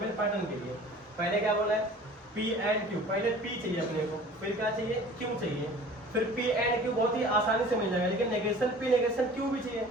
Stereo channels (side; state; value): both; normal; correlation 0.45